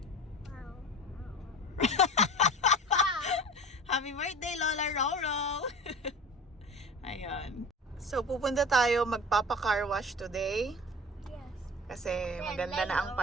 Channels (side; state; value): both; normal; correlation 0.36